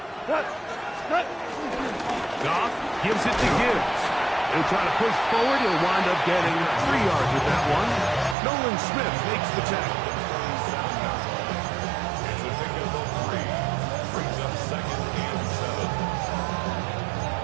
Goff gives it to Gibbs. He'll try to push forward. He'll wind up getting 3 yards with that one. Nolan Smith makes the tackle.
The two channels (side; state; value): left; drops out; at 8.3 s